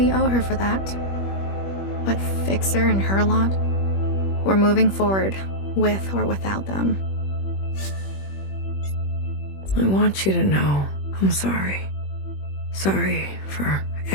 owe her for that. But Fixer and her lot, we're moving forward, with or without them. I want you to know I'm sorry. Sorry for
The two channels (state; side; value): late; right; 21 ms